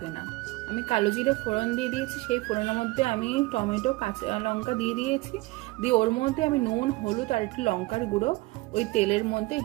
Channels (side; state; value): left; quieter; 21.3 dB